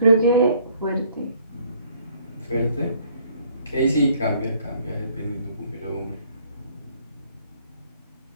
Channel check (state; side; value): inverted; both; correlation -0.61